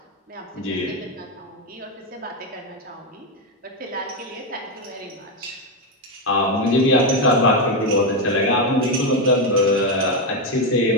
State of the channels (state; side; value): normal; both; correlation 0.07